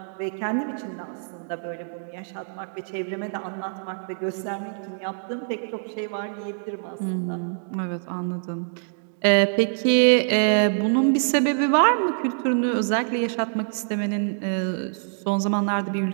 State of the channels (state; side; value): silent; left; digital silence